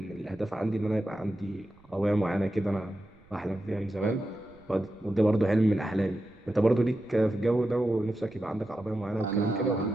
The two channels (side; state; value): right; noise; rumble, 27 dB below the sound